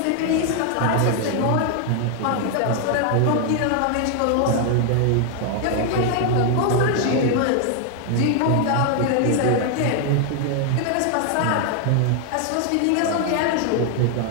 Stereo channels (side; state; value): both; different; correlation 0.00